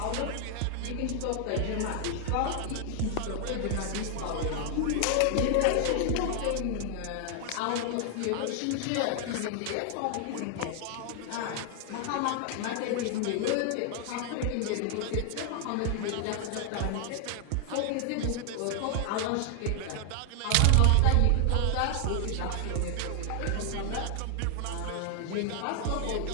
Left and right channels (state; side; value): different; both; correlation 0.00